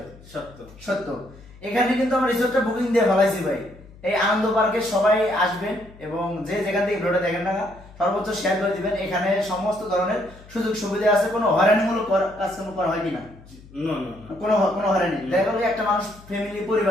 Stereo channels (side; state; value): left; noise; hum, 22 dB below the sound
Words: সত্য। সত্য। এখানে কিন্তু আমরা রিসোর্টটা বুকিং দিয়ে ফেলাইছি ভাই। এই আনন্দ পার্কে সবাই আসবেন এবং যে যেখান থেকে ভিডিওটা দেখেন না সর্বোচ্চ শেয়ার করে দিবেন। এখানে সমস্ত ধরনের সুযোগ সুবিধা আছে, কোনো হয়রানিমূলক কাজকর্ম করা হয় কিনা? না না না, কোনো কোনো হয়রানি। দেখা গেল একটা মানুষ ফ্যামিলি